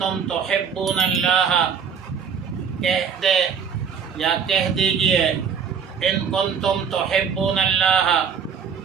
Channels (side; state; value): left; quieter; 6.8 dB